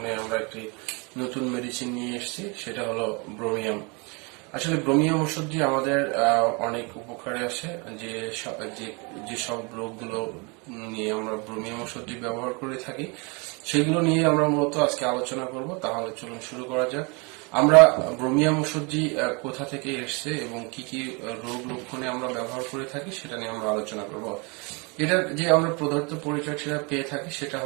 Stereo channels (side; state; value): left; quieter; 30.9 dB